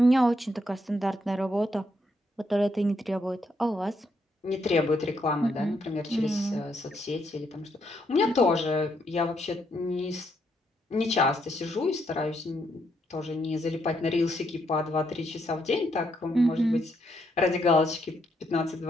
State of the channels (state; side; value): normal; both; correlation 0.76